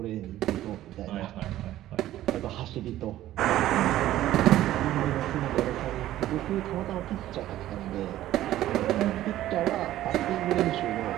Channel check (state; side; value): quieter; left; 13.9 dB